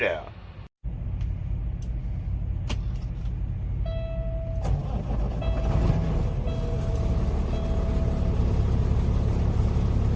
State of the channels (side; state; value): both; identical; correlation 1.00